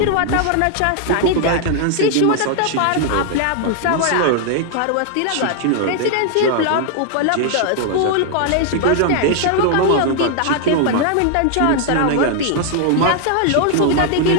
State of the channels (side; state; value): both; different; correlation 0.00